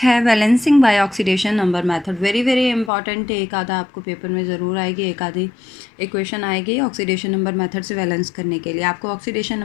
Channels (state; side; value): drops out; right; at 2.9 s